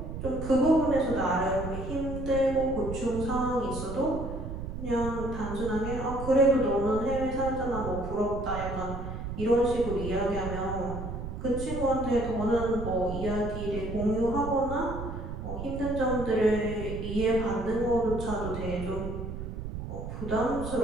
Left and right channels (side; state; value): right; noise; rumble, 7 dB below the sound